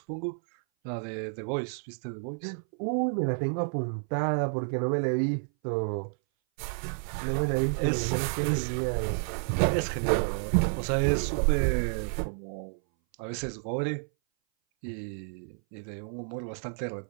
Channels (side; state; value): left; silent; 58 dB below the other